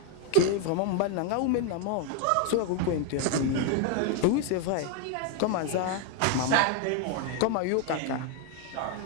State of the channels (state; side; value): different; both; correlation 0.01